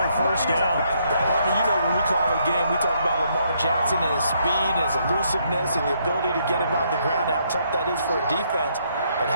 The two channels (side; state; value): both; inverted; correlation -0.72